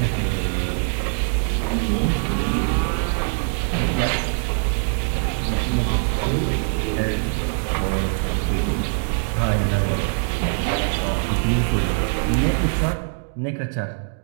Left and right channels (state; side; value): silent; left; digital silence